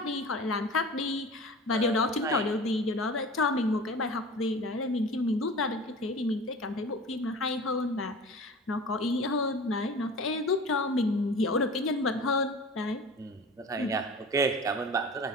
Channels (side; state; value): both; normal; correlation 0.38